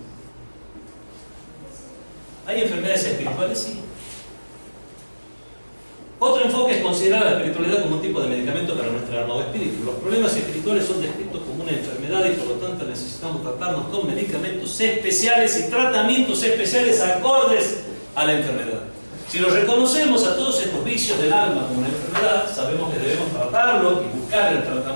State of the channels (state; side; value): inverted; both; correlation -1.00